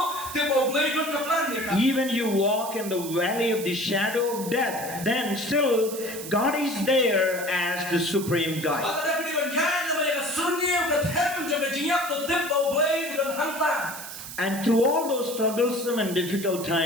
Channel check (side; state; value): right; noise; hiss, 10 dB below the sound